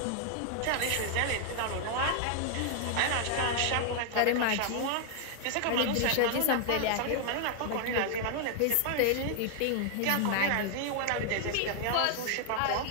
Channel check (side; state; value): both; different; correlation 0.00